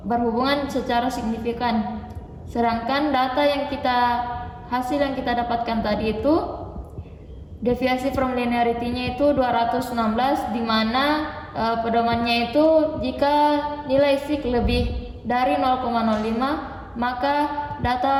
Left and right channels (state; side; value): identical; both; correlation 1.00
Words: berhubungan secara signifikan. Sedangkan hasil yang kita dapatkan tadi itu deviasi from linearity-nya itu 216, di mana pedomannya itu jika nilai sig lebih dari 0,05, maka